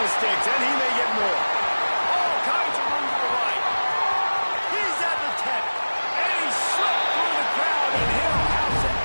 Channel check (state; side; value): inverted; both; correlation -1.00